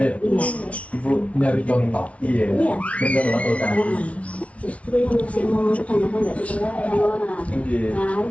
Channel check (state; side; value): late; right; 0.064 ms